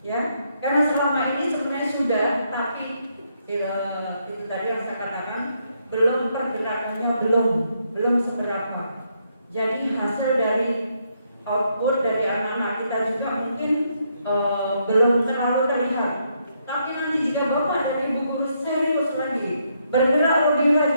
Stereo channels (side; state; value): both; inverted; correlation -0.76